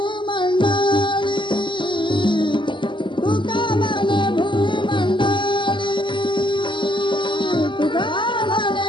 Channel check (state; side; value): late; right; 0.24 ms